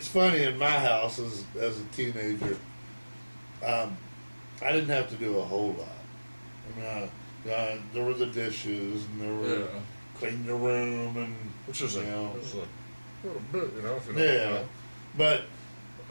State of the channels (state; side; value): inverted; both; correlation -1.00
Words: funny, in my house as a teenager, I didn't have to do a whole lot. I mean, there were the dishes, and there were clean the room, and which is a little bit, if you know. Yeah, but